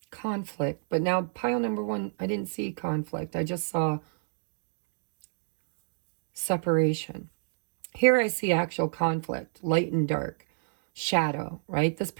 conflict. But now pile number one, I didn't see conflict. I just saw separation. Here I see actual conflict, light and dark, shadow, right? This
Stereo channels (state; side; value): silent; left; digital silence